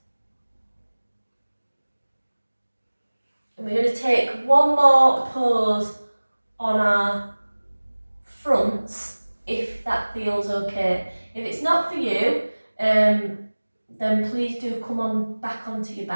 And we're going to take one more pose on our fronts, if that feels okay. If it's not for you, then please do come on back onto your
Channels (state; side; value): inverted; both; correlation -1.00